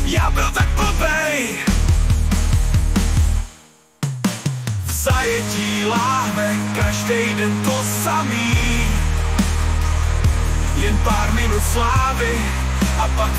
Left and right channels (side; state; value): both; identical; correlation 1.00